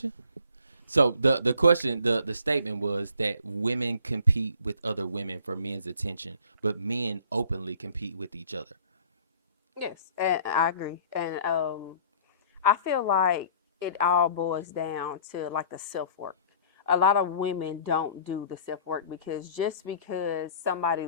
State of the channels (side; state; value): both; inverted; correlation -0.51